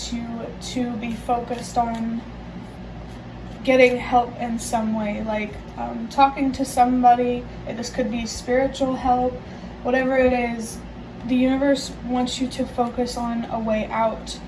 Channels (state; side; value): identical; both; correlation 1.00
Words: you to be focused on getting help in some way, like talking to somebody. This could be spiritual help, whatever it is. The universe wants you to focus on a way out